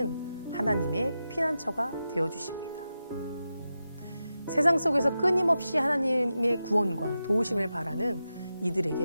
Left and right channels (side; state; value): both; inverted; correlation -0.91